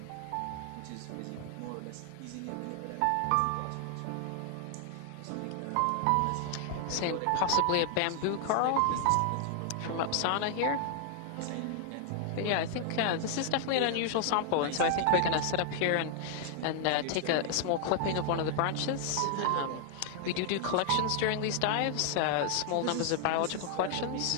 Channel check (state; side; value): different; both; correlation 0.00